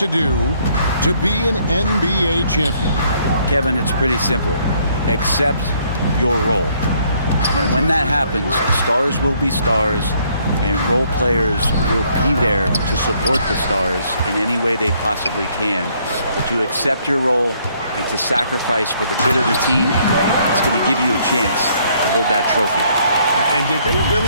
do to be an NBA champion? Kevin, it's pretty simple. Accept your role. And when that happens, stars will be stars, and role players will be there to support the stars in any way they possibly can. But to accept your role and to sacrifice for the good of the team, it's going to give you a chance to hold that trophy. And did they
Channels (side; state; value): both; inverted; correlation -0.66